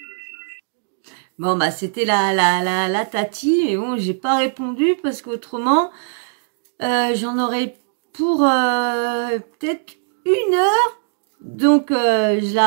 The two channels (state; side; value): silent; left; digital silence